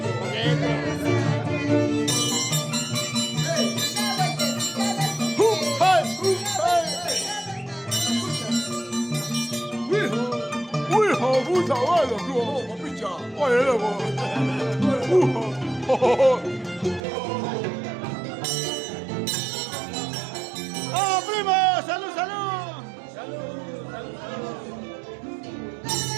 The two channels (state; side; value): drops out; left; at 17.0 s